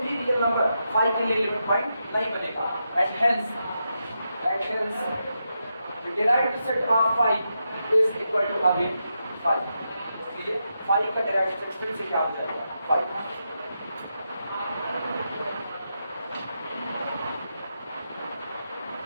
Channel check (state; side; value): inverted; both; correlation -0.85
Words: भी रियल नंबर फाई के लिए लिमिट पॉइंट नहीं बनेगा, and hence the derived set of phi is equal to again phi। इसलिए phi का derived set फिर से क्या हो जाएगा, phi।